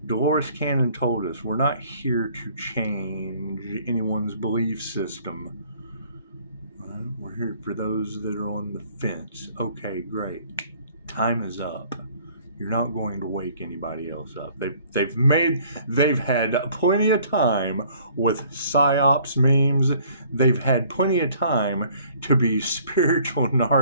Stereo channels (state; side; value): inverted; both; correlation -0.57